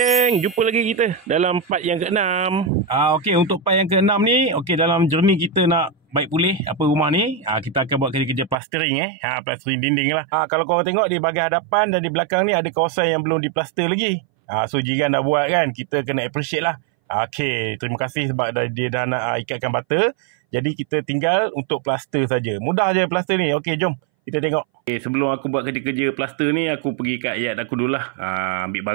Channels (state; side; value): drops out; left; at 8.6 s